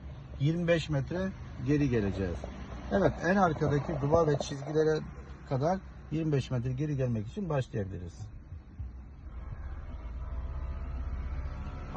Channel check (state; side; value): identical; both; correlation 1.00